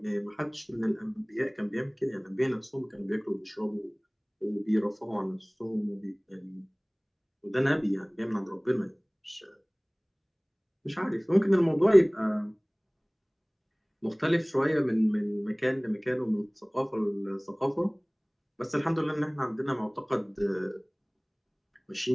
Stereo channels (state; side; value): identical; both; correlation 1.00